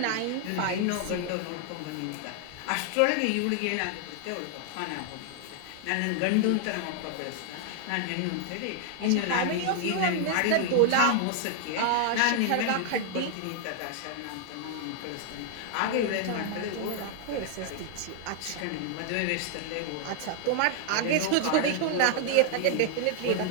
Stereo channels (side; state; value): both; different; correlation 0.00